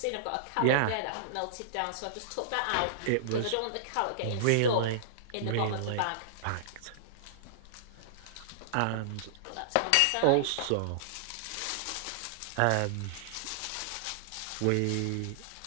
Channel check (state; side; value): different; both; correlation -0.02